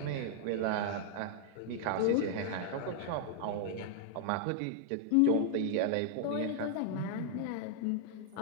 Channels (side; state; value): both; different; correlation 0.00